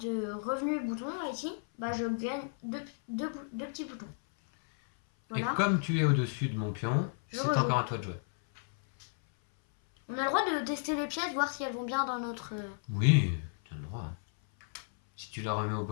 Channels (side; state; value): right; silent; 56 dB below the other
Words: revenu bouton là ici, bah je gagne deux petits boutons. Voilà. Et comme tu es au-dessus de mon pion, c'est encore à toi de jouer. On a le droit de tester les pièces, voir si elles vont bien dans notre... Oui, tu as le droit. Si tu la remets au